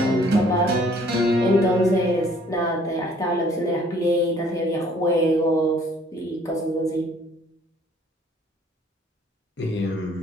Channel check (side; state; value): both; normal; correlation 0.58